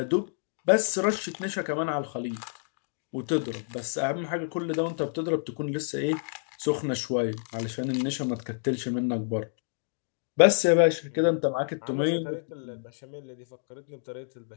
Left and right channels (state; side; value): silent; right; digital silence